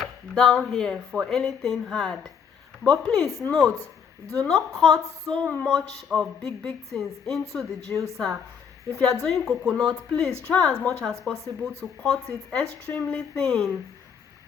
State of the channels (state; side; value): quieter; right; 7.0 dB